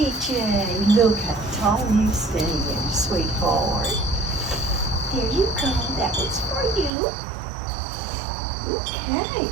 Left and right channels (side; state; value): left; drops out; at 6.9 s